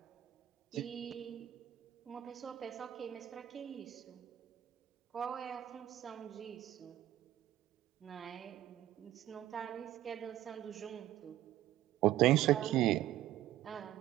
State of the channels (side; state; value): left; quieter; 13.5 dB